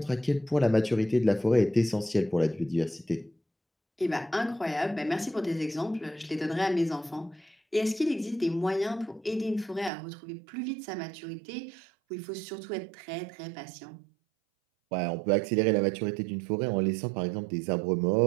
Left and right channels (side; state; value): left; drops out; at 9.9 s